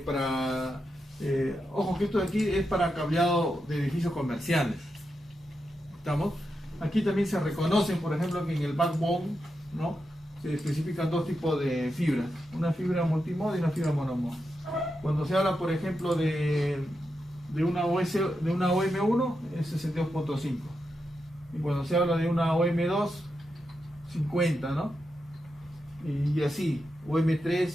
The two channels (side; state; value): both; normal; correlation 0.87